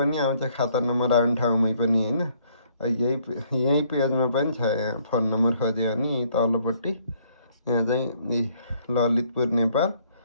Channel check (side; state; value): both; inverted; correlation -0.65